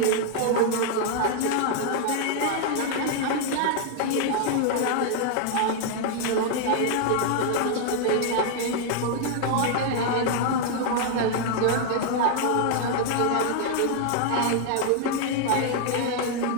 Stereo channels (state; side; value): different; both; correlation 0.00